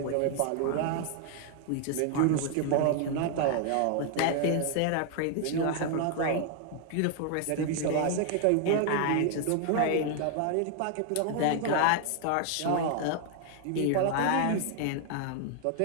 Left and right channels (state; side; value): different; both; correlation 0.00